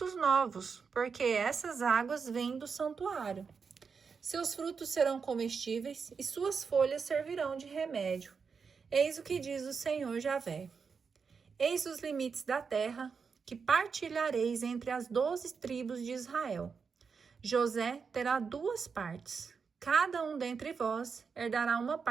novos, porque essas águas vêm do santuário. Seus frutos serão comestíveis, e suas folhas servirão de remédio. Eis o que diz o Senhor Javé. Eis os limites da terra, que partilhareis entre as 12 tribos de Israel. José terá 2 partes. Cada um dentre vós herdará uma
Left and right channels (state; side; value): quieter; left; 5.6 dB